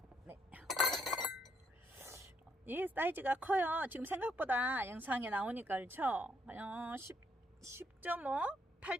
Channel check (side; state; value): both; normal; correlation 0.72